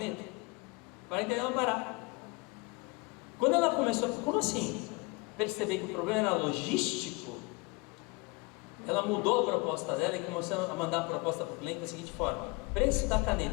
para entregar no Pará. Quando ela começou, como assim? Perceber que o problema era logístico, ela mudou a proposta dela e começou a mandar a proposta para o cliente da seguinte forma: preço da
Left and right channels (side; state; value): right; quieter; 27.1 dB